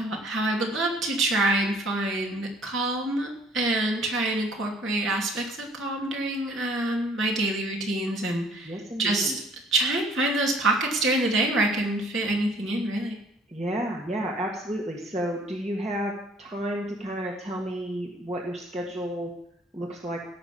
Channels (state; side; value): normal; both; correlation 0.57